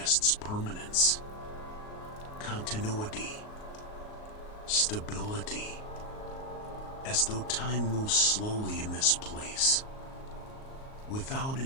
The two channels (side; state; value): right; late; 38 ms